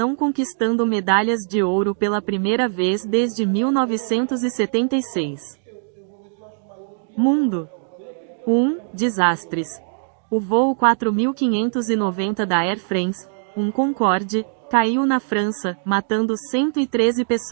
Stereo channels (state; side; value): silent; left; digital silence